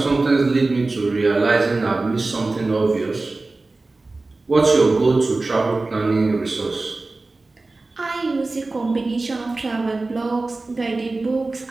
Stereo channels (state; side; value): quieter; left; 3.3 dB